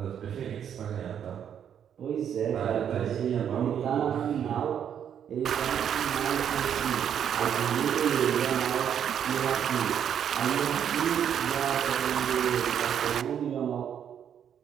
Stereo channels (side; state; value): left; quieter; 8.8 dB